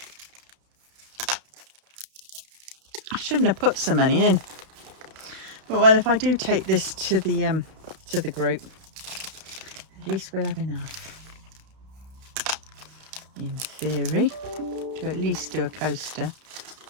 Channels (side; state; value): left; late; 32 ms